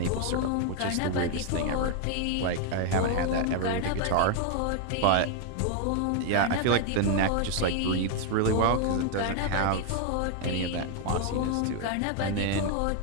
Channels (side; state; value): both; different; correlation 0.00